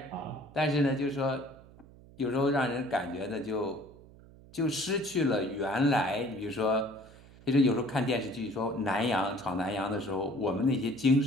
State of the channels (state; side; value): noise; right; hum, 22 dB below the sound